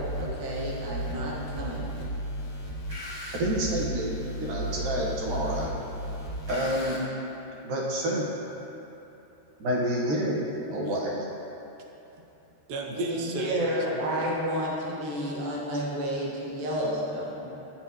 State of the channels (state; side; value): late; left; 13 ms